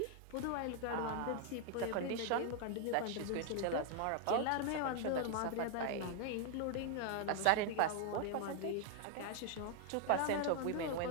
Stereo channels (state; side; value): different; both; correlation 0.00